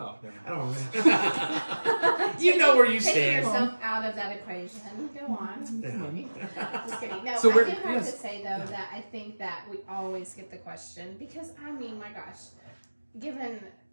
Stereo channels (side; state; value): both; inverted; correlation -1.00